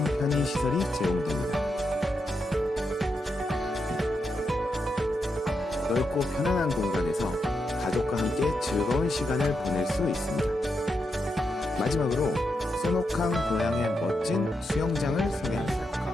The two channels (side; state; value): both; normal; correlation 0.84